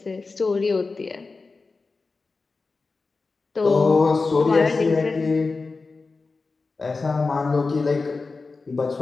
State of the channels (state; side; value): quieter; right; 4.0 dB